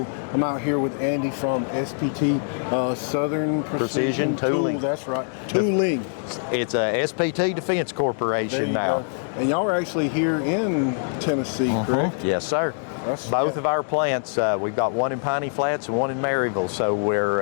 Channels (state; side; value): silent; right; digital silence